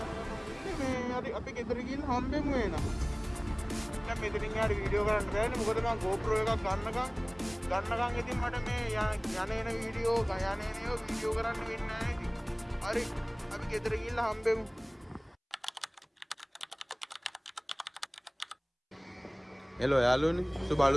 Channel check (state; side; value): identical; both; correlation 1.00